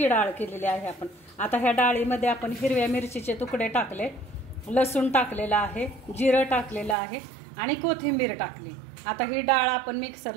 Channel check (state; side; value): drops out; left; at 7.0 s